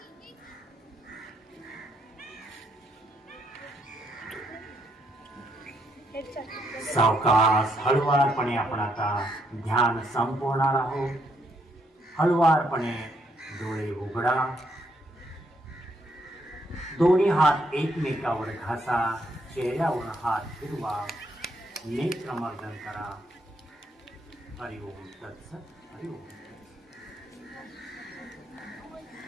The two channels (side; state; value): both; normal; correlation 0.74